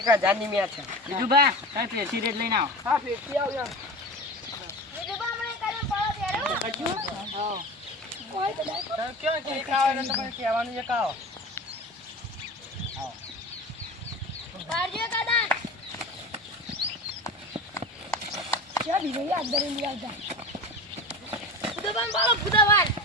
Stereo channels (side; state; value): both; normal; correlation 0.30